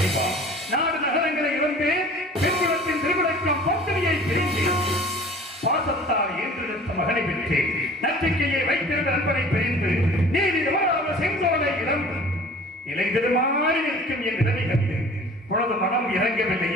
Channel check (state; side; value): normal; both; correlation 0.46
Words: நாடு நகரங்களை இழந்து பெண்குலத்தின் திருவிழக்கம் பத்திரியை பிரிந்தேன். பாசத்தால் ஏற்றெடுத்த மகனை பெற்றேன். நம்பிக்கையை வைத்திருந்த நண்பனை பிரிந்து நீதி தவறாத செங்கோலை இழந்து இலைந்திருமாறி நிற்கும் என் நிலைமை கண்டு உனது மனம்